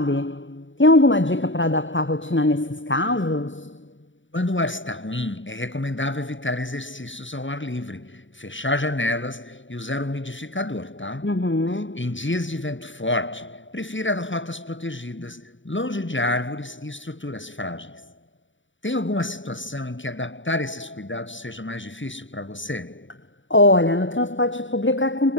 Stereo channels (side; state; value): right; late; 0.55 ms